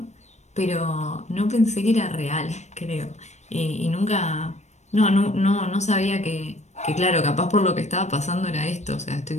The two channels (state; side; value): late; right; 0.33 ms